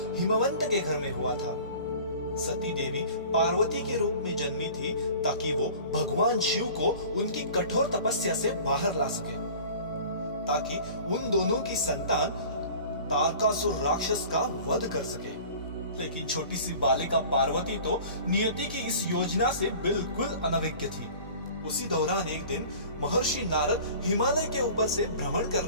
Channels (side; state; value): both; inverted; correlation -0.43